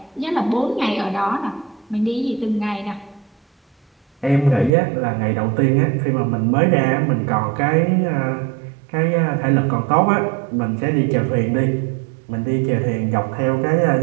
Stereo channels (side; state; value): left; drops out; at 4.7 s